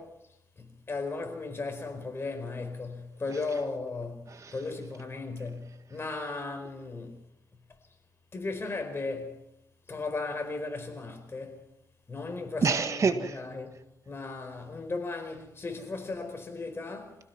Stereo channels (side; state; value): both; normal; correlation 0.68